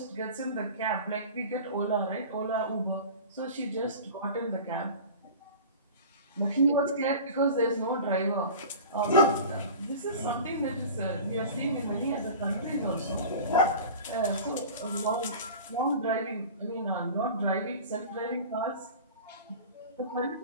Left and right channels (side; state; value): both; inverted; correlation -0.37